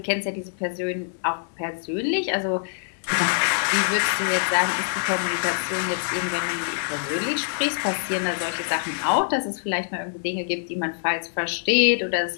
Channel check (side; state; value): right; silent; digital silence